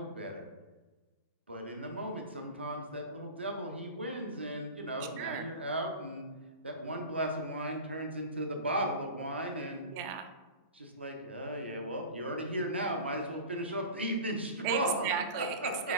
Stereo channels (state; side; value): inverted; both; correlation -0.33